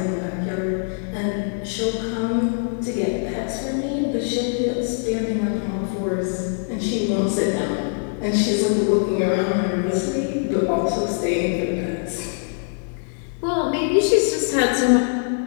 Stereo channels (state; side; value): silent; right; digital silence